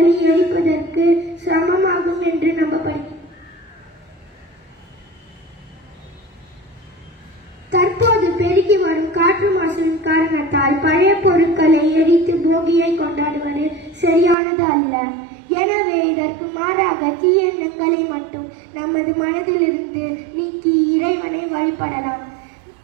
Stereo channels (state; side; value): drops out; left; at 14.4 s